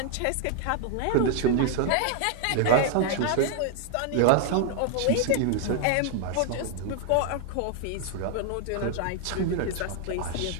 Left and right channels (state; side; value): different; both; correlation 0.00